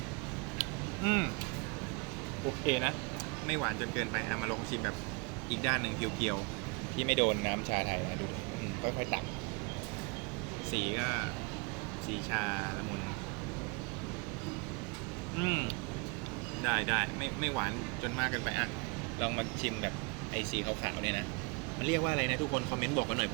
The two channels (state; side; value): quieter; left; 30.3 dB